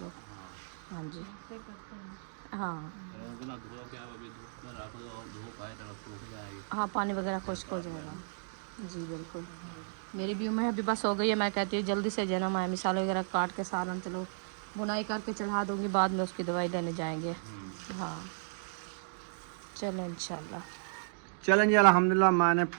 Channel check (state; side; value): silent; left; digital silence